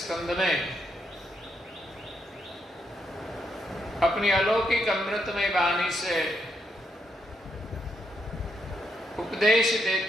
में अपनी अलौकिक अमृतमय वाणी से उपदेश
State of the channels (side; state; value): both; normal; correlation 0.78